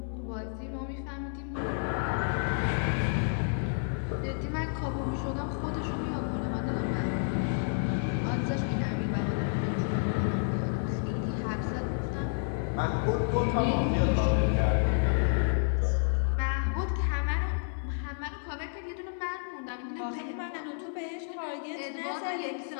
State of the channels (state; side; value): silent; right; 58 dB below the other